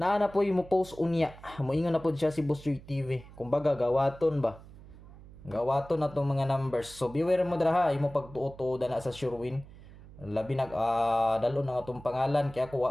na po mo post unya. Moingon na po siya si Busoy TV. Kumbaga gawaton ba. Gawaton na tong mga numbers. So beware mo dira ha, imo pagtuo-tuo na sa Surewin. Labi dalo na atong pangalan kaya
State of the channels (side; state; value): right; noise; hum, 19 dB below the sound